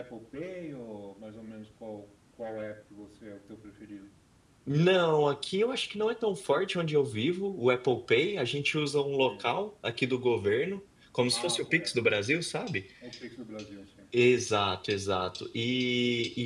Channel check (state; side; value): identical; both; correlation 1.00